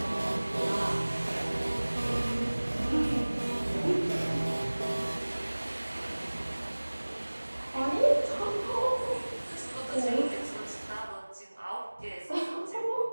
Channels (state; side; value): inverted; both; correlation -1.00